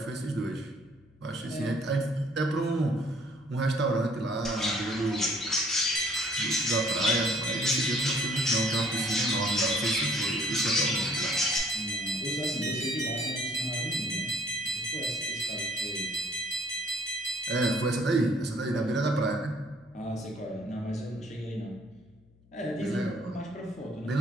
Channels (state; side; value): noise; left; hum, 29 dB below the sound